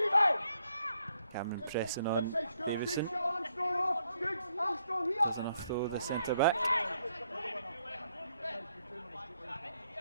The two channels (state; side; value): inverted; both; correlation -0.74